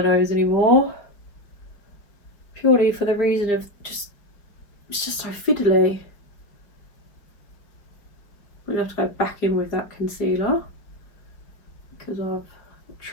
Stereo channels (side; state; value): right; late; 4.9 ms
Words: nose anymore, purely for the reason of just, it's just so fiddly. I'm gonna have to go back in with that concealer because I've